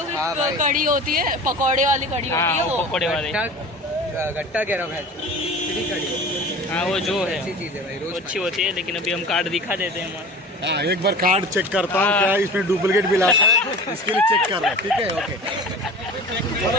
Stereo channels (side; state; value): both; normal; correlation 0.38